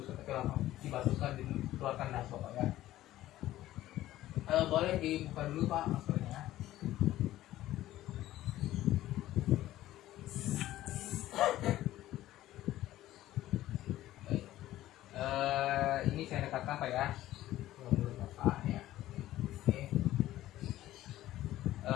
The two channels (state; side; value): quieter; right; 14.7 dB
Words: tapi langsung dibatukkan, dikeluarkan dahak, Bapak, ya. Boleh dibuka dulu, Pak, maskernya. Ini saya dekatkan, Pak, ya. Mulut Bapak, ya. Oke.